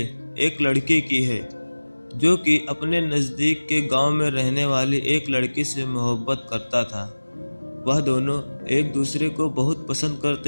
एक लड़के की है जो कि अपने नज़दीक के गांव में रहने वाली एक लड़की से मोहब्बत करता था। वह दोनों एक दूसरे को बहुत पसंद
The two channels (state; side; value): inverted; both; correlation -1.00